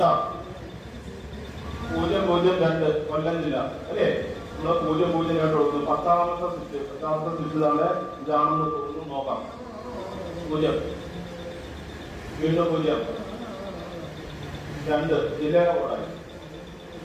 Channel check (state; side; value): identical; both; correlation 1.00